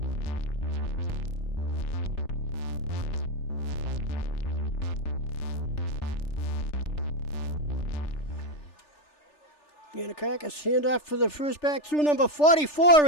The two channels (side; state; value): right; late; 3.4 ms